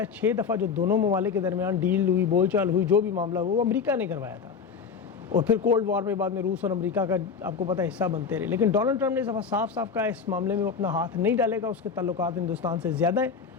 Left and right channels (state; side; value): quieter; right; 5.9 dB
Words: 6 دفعہ جو دونوں ممالک کے درمیان ڈیل ہوئی، بول چال ہوئی، جو بھی معاملہ ہوا وہ امریکہ نے کروایا تھا. اور پھر کولڈ وار میں بعد میں روس اور امریکہ کا آپ کو پتہ ہے حصہ بنتے رہے. لیکن ڈونلڈ ٹرمپ نے اس دفعہ صاف صاف کہا اس معاملے میں وہ اپنا ہاتھ نہیں ڈالے گا، اس کے تعلقات ہندوستان سے زیادہ ہیں.